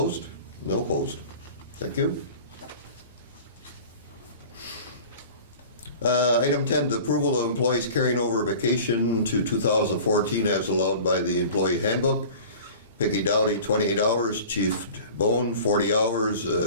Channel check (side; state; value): both; inverted; correlation -0.41